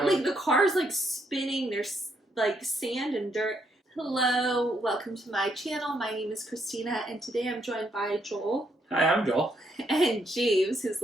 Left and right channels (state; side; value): normal; both; correlation 0.75